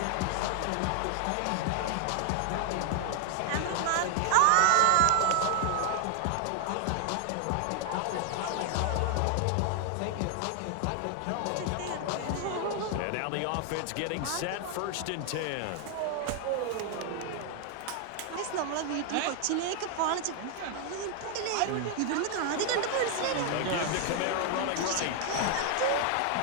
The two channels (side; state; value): both; different; correlation 0.00